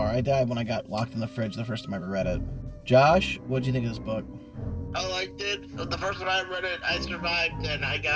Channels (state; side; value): identical; both; correlation 1.00